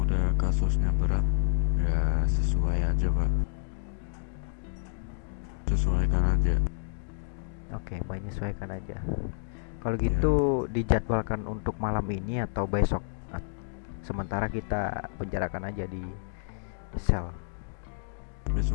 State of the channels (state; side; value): silent; right; digital silence